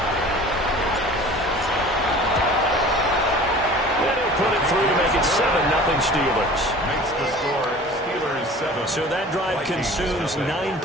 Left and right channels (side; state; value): both; normal; correlation 0.43